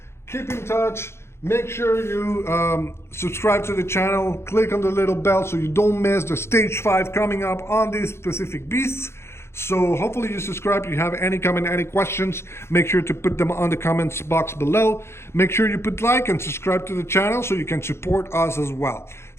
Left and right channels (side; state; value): right; late; 0.12 ms